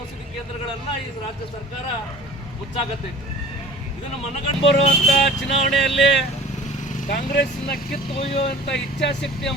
ಔಷಧಿ ಕೇಂದ್ರಗಳನ್ನ ಈ ರಾಜ್ಯ ಸರ್ಕಾರ ಮುಚ್ಚಾಕತ್ತೈತೆ. ಇದನ್ನು ಮನಗಂಡು ಬರುವಂತ ಚುನಾವಣೆಯಲ್ಲಿ ಕಾಂಗ್ರೆಸ್ನ ಕಿತ್ತು ಒಯ್ಯುವಂತ ಇಚ್ಛಾಶಕ್ತಿಯ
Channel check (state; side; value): normal; both; correlation 0.44